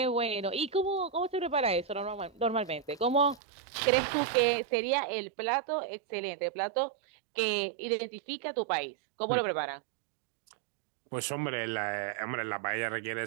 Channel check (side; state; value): left; drops out; at 3.4 s